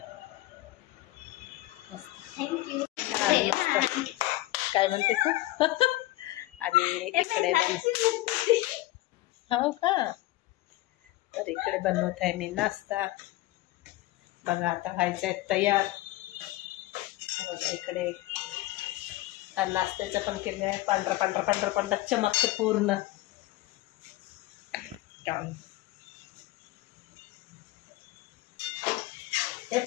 मस्त छान मस्त. काय म्हणते तू? आणि इकडे हो का, तर इकडे बनवत आहे मी नाश्ता. बघा आता व्हायचं आहे तयार. इकडे नाश्त्याचं पण केलं आहे. पांढरा पांढरा पांढरा पांढरा चमकते पूर्ण. ते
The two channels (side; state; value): right; quieter; 17.5 dB